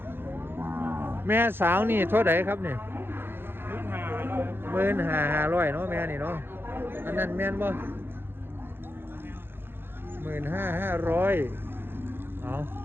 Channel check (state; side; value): late; left; 0.10 ms